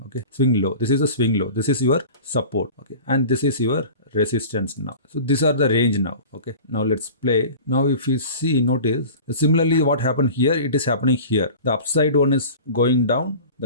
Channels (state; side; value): inverted; both; correlation -0.39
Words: Okay, swing low, this is the swing low, this is your support. Okay, and this is your resistance now. So these are the range now. Okay, now let's play. Now if you see, notice similarly what happened here, it is happening here. The upside one is going down,